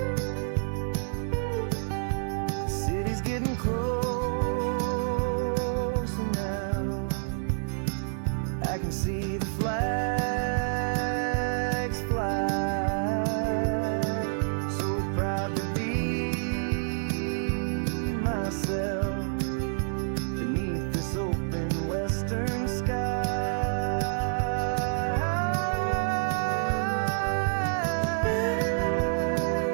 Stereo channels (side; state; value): left; silent; digital silence